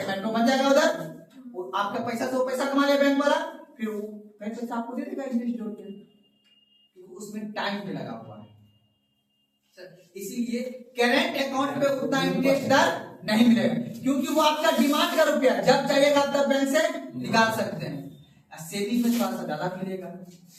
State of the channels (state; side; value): identical; both; correlation 1.00